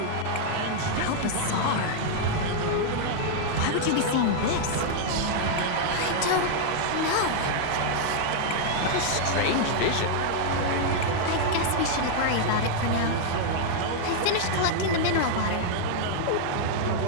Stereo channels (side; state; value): both; different; correlation -0.01